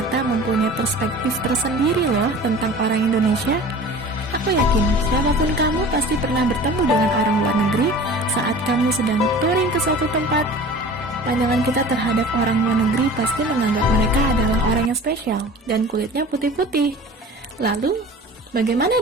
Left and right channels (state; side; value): normal; both; correlation 0.41